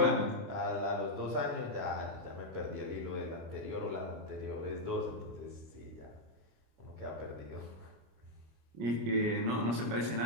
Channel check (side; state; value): left; late; 26 ms